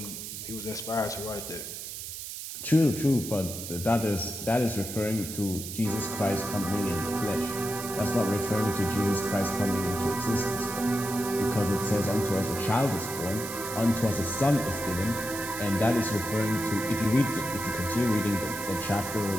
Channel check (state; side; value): noise; right; hiss, 8 dB below the sound